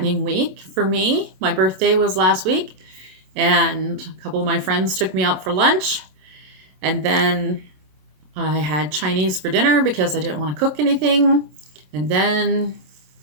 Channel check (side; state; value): left; late; 27 ms